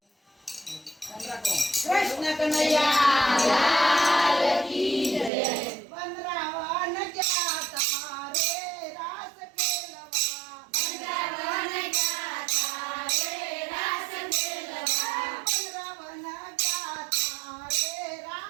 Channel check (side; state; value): left; drops out; at 5.3 s